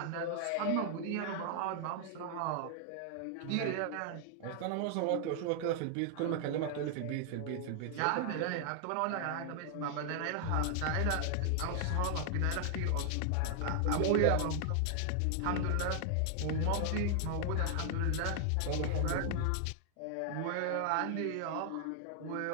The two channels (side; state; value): both; different; correlation 0.00